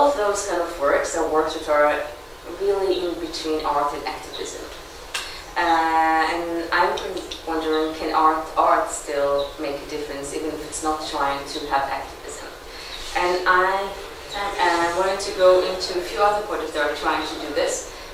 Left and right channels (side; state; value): both; identical; correlation 1.00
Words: of those kind of works are works that are really in between art and activism. And I'm wondering, can art still make a difference even if it's not trying to have activism? And I wanted to go into a few other projects that are trying to do this